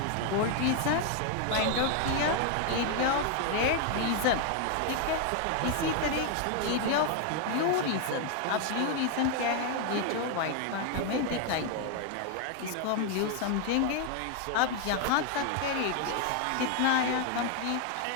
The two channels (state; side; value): different; both; correlation 0.00